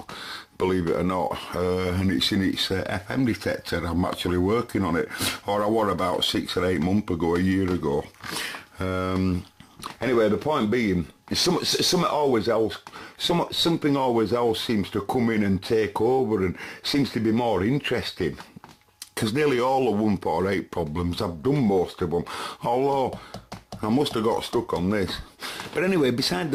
believe it or not, and it's in its FM detector. I'm actually working on it, or I was about 6 or 8 months ago, a year ago. Anyway, the point being, something always else seems to come in and take over, and seems to be more interesting. Because nearly all the 148 problems, I've done most of them, although I must have got stuck on this. But anyway, beside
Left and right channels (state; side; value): identical; both; correlation 1.00